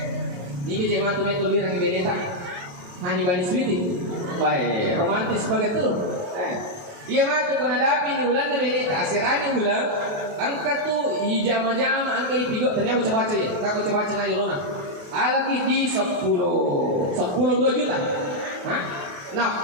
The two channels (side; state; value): left; late; 28 ms